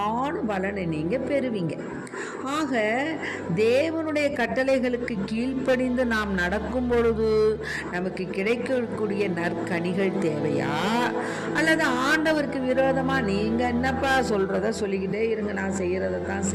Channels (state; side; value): identical; both; correlation 1.00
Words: பலனை நீங்கள் பெறுவீங்க. ஆக தேவனுடைய கட்டளைகளுக்கு கீழ்ப்படிந்து நாம் நடக்கும் பொழுது நமக்கு கிடைக்கக்கூடிய நற்கனிகள் தேவையா, அல்லது ஆண்டவருக்கு விரோதமாக நீங்கள் என்னப்பா சொல்கிறத சொல்லிக்கிட்டே இருங்க, நான் செய்கிறத தான்